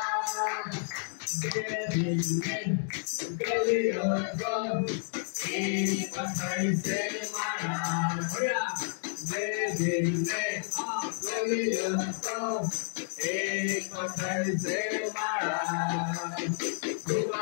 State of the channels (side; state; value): right; silent; digital silence